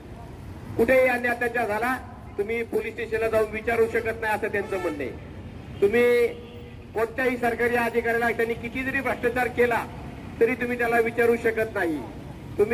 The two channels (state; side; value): identical; both; correlation 1.00